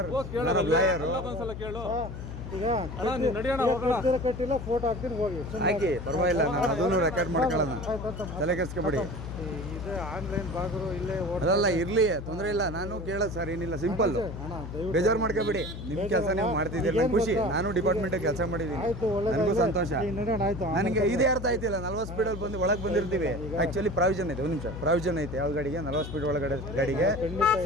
ಲಾಯರು ಕಟ್ಟಿಲ್ಲ, ಫೋಟೋ ಹಾಕ್ತೀನಿ, ಹೋಗಿ ಹಾಕಿ, ಪರವಾಗಿಲ್ಲ. ನಾನು ಅದನ್ನು ರೆಕಾರ್ಡ್ ಮಾಡ್ಕೊಳ್ಳೋಣ, ತಲೆ ಕೆಡಿಸ್ಕೊಬೇಡಿ. ಆನ್ಲೈನ್ ಬಾಗರು ಇಲ್ಲೇ ಅದಲ್ಲ ಇರ್ಲಿ, ತೊಂದರೆ ಇಲ್ಲ. ನಾನು ಕೇಳೋದು ಸರ್ ಏನಿಲ್ಲ, ಸಿಂಪಲ್. ಬೇಜಾರು ಮಾಡ್ಕೋಬೇಡಿ. ನಿಮ್ಮ ಕೆಲಸ ನೀವು ಮಾಡ್ತಿದ್ದೀರಿ, ಖುಷಿ. ನಾನು ಡಿಪಾರ್ಟ್ಮೆಂಟ್ ಕೆಲಸ ಮಾಡಿದ್ದೀನಿ, ನನಗೂ ಸಂತೋಷ. ನನಗೆ ಇದೇ ಅರ್ಥ ಆಯ್ತಿಲ್ಲ. 40 ಸ್ಪೀಡಲ್ಲಿ ಬಂದು ಒಳಗೆ ಬಂದಿರ್ತೀವಿ. ಆಕ್ಚುಲಿ ಪ್ರಾವಿಷನ್ ಐತೆ, ಒಂದು ನಿಮಿಷ ಪ್ರಾವಿಷನ್ ಐತೆ. ಯಾವ ಗಾಡಿಗೆ 40 ಸ್ಪೀಡ್ ಒಳಗಡೆ ಗಾಡಿಗೆ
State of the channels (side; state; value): left; noise; hum, 8 dB below the sound